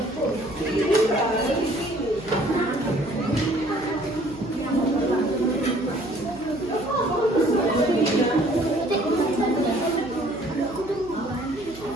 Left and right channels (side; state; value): right; noise; hum, 18 dB below the sound